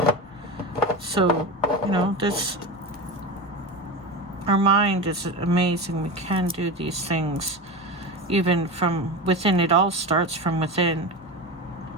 So, you know, our mind is amazing. We can do these things even from within. It all starts from within.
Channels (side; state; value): both; normal; correlation 0.23